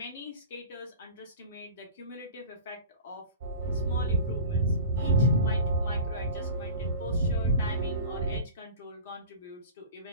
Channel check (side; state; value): both; inverted; correlation -0.36